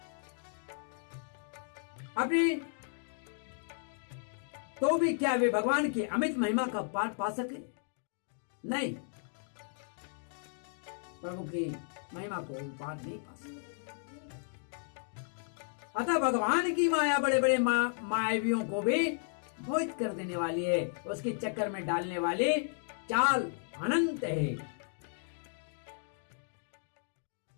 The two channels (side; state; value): right; silent; digital silence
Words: अपनी तो भी क्या वे भगवान की अमित महिमा का पाठ पा सके? नहीं, प्रभु की महिमा को पाठ नहीं पा सके। अतः भगवान की माया बड़े बड़े मायावियों को भी मोहित कर देने वाली है, उसके चक्कर में डालने वाली चाल अनंत है।